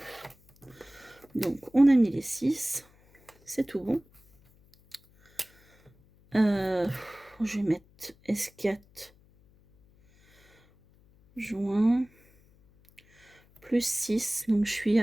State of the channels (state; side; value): noise; left; hum, 30 dB below the sound